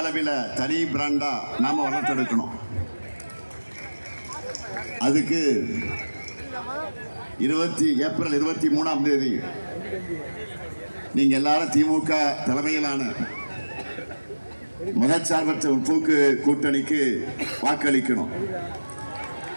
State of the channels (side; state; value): both; inverted; correlation -1.00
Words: தனி பிராண்டா நாம வளர்த்தெடுக்கணும். அதுக்கு ஏப்ரல் 23 நீங்க எல்லாரும் திமுக தலைமையிலான மதச்சார்பற்ற முற்போக்கு கூட்டணிக்கு வாக்களிக்கணும்.